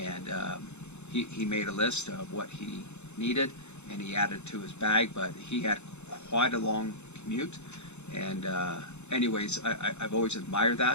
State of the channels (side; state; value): right; late; 0.82 ms